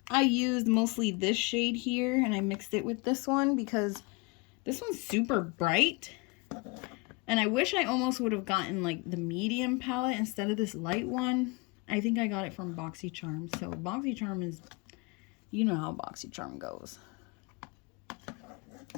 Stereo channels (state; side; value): quieter; right; 27.3 dB